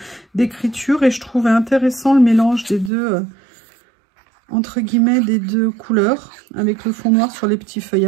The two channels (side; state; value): left; drops out; at 2.9 s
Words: d'écriture. Et je trouvais intéressant le mélange des deux, entre guillemets, des deux couleurs. Avec le fond noir sur les petits